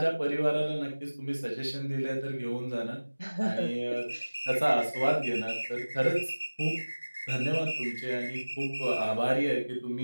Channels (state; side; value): inverted; both; correlation -1.00